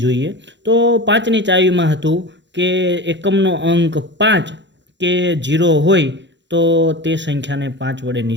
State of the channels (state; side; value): late; left; 0.52 ms